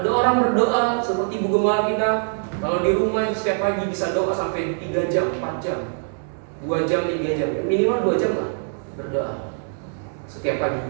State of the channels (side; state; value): left; silent; 62 dB below the other